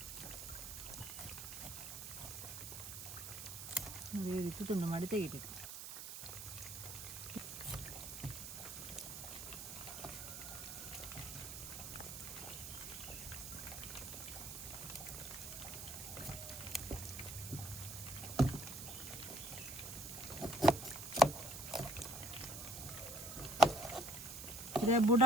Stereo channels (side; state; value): right; noise; hiss, 8 dB below the sound